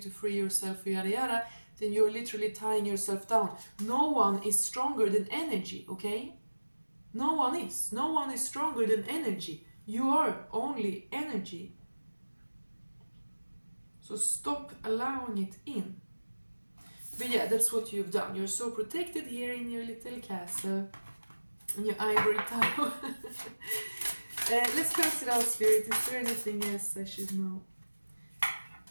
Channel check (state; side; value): inverted; both; correlation -1.00